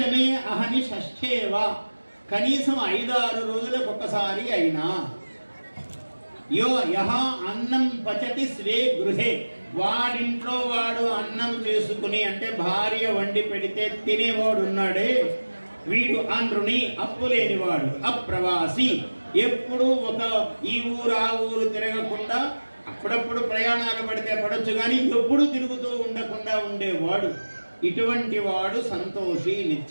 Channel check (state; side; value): inverted; both; correlation -1.00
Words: అహని షష్ఠేవా, కనీసం 5-6 రోజులకు ఒకసారి అయినా. యో యహ అన్నం పచతి స్వే గృహే, వాడింట్లో వాడు అన్నం చేసుకుని అంటే భార్య వండి పెడితే తినేవాడు ఉన్నాడే వీడు అనృణి, అప్పు లేనివాడు. అప్రవాసి, ఎప్పుడు ఒక ఈ ఊరు ఆ ఊరు తిరగకుండా, అప్పుడప్పుడు ప్రయాణాలు పడితే పడొచ్చు కానీ ఎప్పుడు తిరుగుతూ ఉండకుండా ఉండేవాడు. ఇటువంటి వాడు సంతోషి,